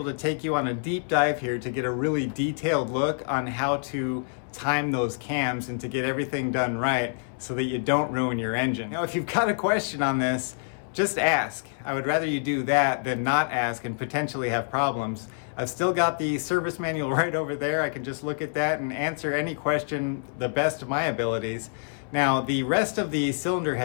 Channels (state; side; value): silent; right; 60 dB below the other